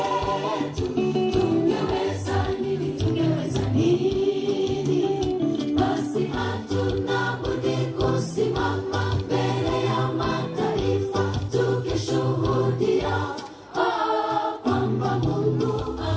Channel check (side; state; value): both; identical; correlation 1.00